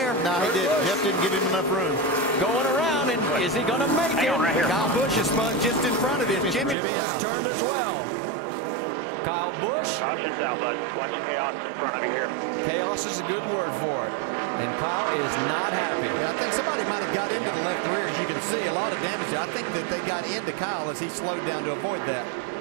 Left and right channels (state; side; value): drops out; left; at 6.8 s